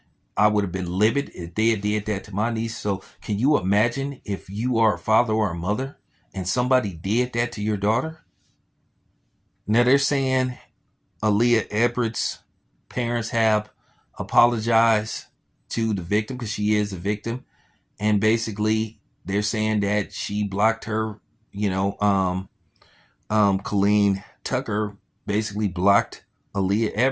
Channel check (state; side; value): identical; both; correlation 1.00